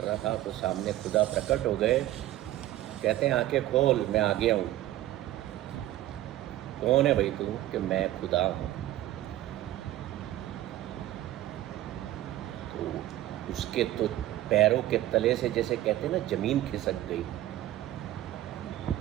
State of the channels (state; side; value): quieter; left; 14.4 dB